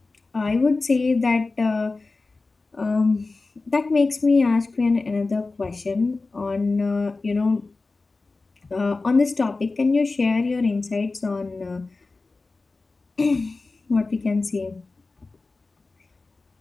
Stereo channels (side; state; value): right; quieter; 3.6 dB